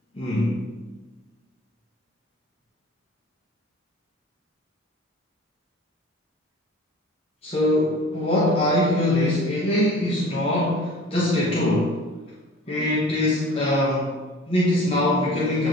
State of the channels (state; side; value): normal; both; correlation 0.43